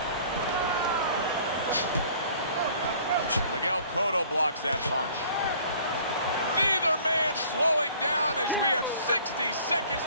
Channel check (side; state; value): both; inverted; correlation -0.53